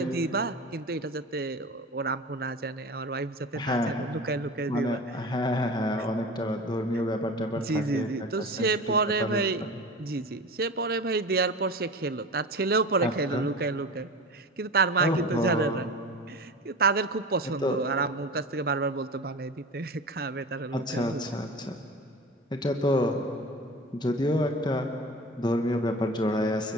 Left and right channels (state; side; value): normal; both; correlation 0.32